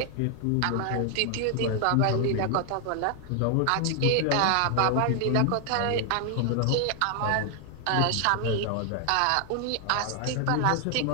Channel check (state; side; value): different; both; correlation 0.00